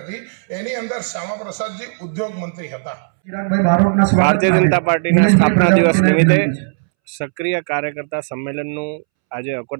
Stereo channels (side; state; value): left; silent; 67 dB below the other